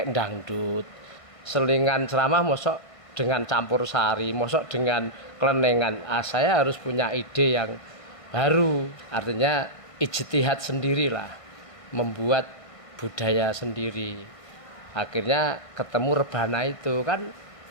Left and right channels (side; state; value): right; late; 1.5 ms